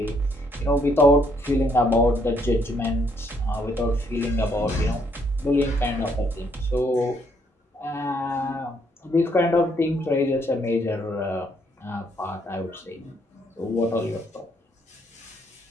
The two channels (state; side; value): normal; both; correlation 0.70